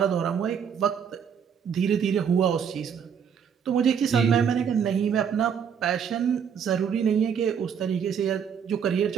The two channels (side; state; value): left; quieter; 7.5 dB